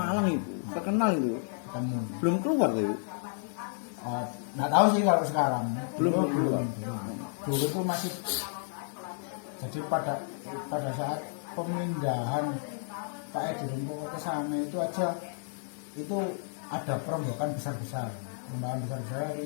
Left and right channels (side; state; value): right; silent; 57 dB below the other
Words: itu, terkenal itu. ketemu. Belum keluar tuh, Ibu? Nggak tahu sih kalau sekarang. Belum. Dulu itu masih, jadi pada saat pemindahan Pak Edi Rumpoko ke sana itu aja itu ada perombakan besar-besar. Perombakan besar-besar